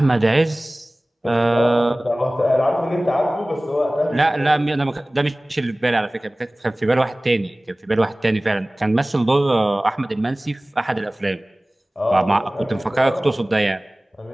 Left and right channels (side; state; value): both; normal; correlation 0.98